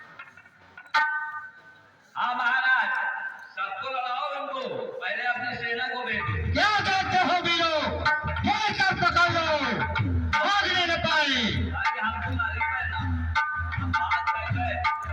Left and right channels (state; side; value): identical; both; correlation 1.00